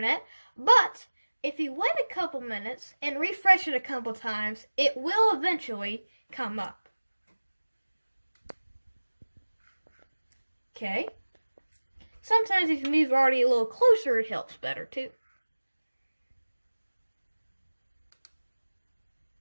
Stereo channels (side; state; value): both; inverted; correlation -1.00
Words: but if you wait a couple minutes and refresh it a couple times, it will eventually come up. Okay. Sometimes if you move Artie a little closer, it helps better too.